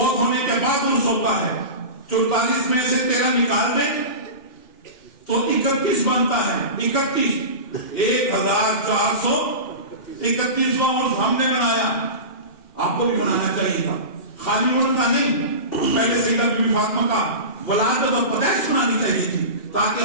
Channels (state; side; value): late; right; 2.8 ms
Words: ہونے کے بعد عرس ہوتا ہے. 44 میں سے 13 نکال دیں تو 31 بنتا ہے. 31 1431واں عرس ہم نے بنایا. آپ کو بھی بنانا چاہیے تھا، خالی عرس کا نہیں. پہلے سیدہ بی بی فاطمہ کا ولادت اور پیدائش بنانی چاہیے تھی تاکہ